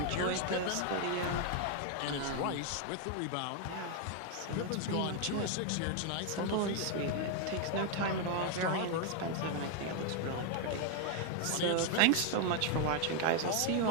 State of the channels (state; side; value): different; both; correlation 0.00